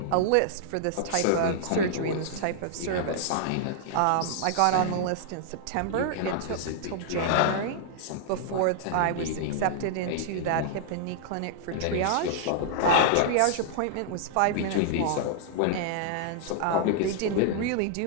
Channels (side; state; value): both; different; correlation -0.01